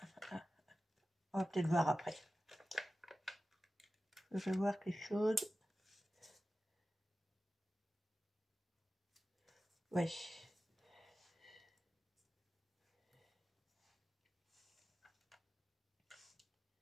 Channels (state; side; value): normal; both; correlation 0.95